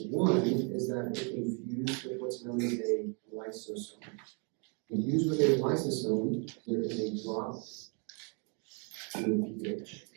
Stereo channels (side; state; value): left; quieter; 37.0 dB